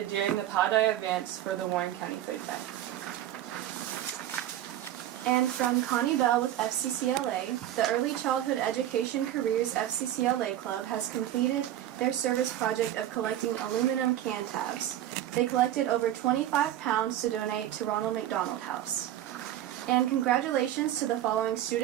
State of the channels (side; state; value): left; quieter; 12.5 dB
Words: during the Pi Day events for the Warren County Food Bank. And from Connie Bell with FCCLA, the Early Childhood Education Careers FCCLA Club has completed their service project of collecting aluminum can tabs. They collected over 25 pounds to donate to Ronald McDonald House. And congratulations to the following